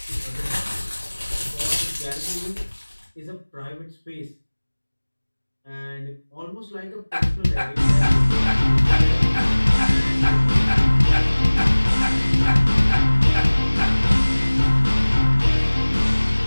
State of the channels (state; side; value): inverted; both; correlation -1.00